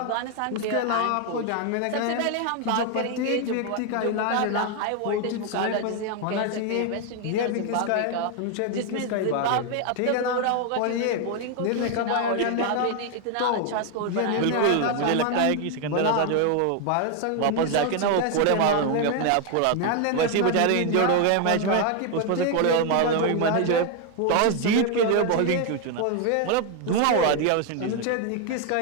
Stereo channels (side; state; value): both; different; correlation 0.01